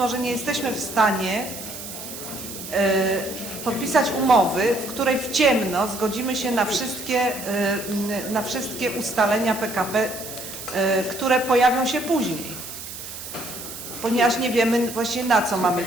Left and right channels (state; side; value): noise; right; hiss, 10 dB below the sound